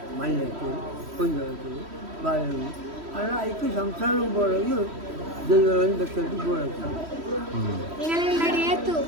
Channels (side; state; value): left; late; 3.1 ms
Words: ಮಲ್ಲೆತ್ತು ಕೊಂಜತ್ತು ಬಾಳೆಹಣ್ಣು ಅಲ್ಲ ಅದಕ್ಕೆ ಸಂಸಾರ ಬೋಳಗಿ ದೈವಗಳನ್ನು ಬೆಕ್ಕದ್ದು ಬೋಳಕ್ಕೆ ನಡೆಯಿತು